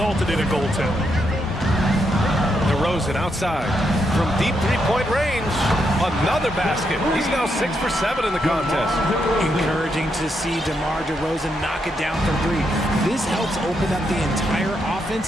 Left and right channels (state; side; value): normal; both; correlation 0.80